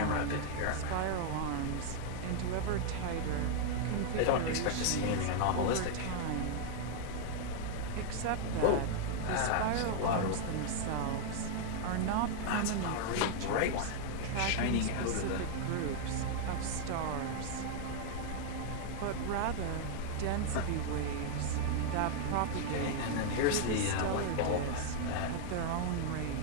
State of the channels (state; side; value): different; both; correlation 0.00